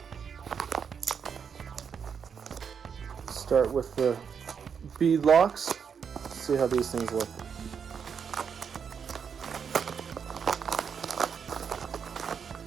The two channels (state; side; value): quieter; left; 6.8 dB